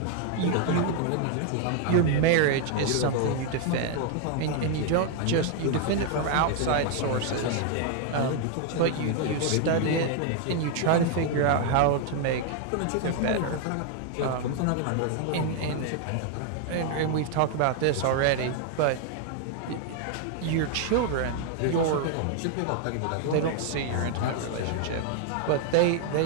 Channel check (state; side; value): different; both; correlation 0.00